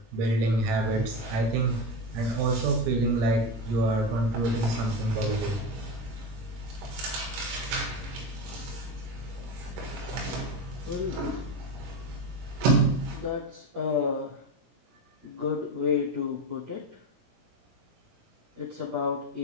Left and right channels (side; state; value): left; late; 17 ms